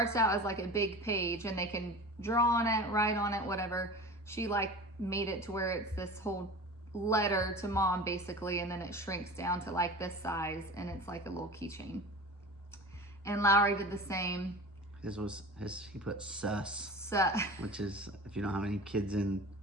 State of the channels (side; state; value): both; normal; correlation 0.35